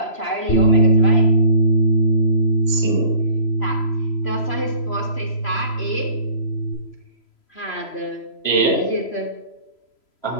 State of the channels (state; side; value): late; right; 3.0 ms